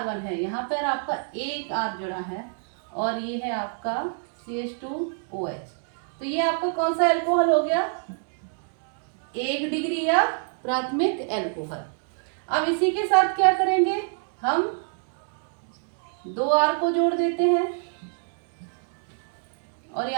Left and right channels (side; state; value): left; silent; 61 dB below the other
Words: है, यहाँ पर आपका एक R जुड़ा है और ये है आपका CH2OH। तो ये आपका कौन सा एल्कोहल हो गया, 1 डिग्री या प्राथमिक एल्कोहल। अब इसी के साथ क्या करेंगे, हम 2 R को जोड़ देते हैं और